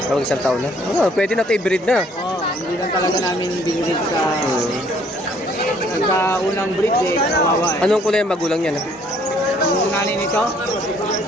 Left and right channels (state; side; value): normal; both; correlation 0.62